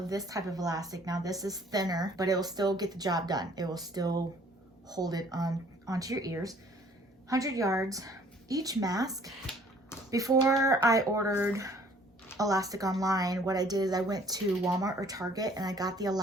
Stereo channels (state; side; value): normal; both; correlation 0.57